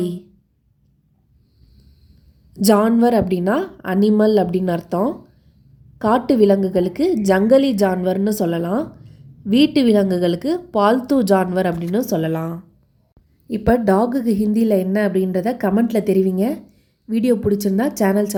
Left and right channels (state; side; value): identical; both; correlation 1.00